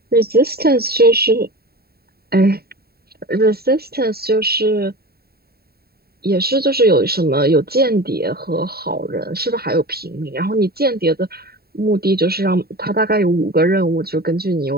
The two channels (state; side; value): late; left; 0.45 ms